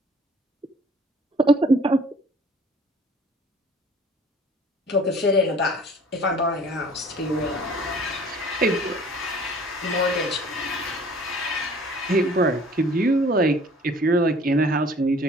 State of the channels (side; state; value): both; normal; correlation 0.52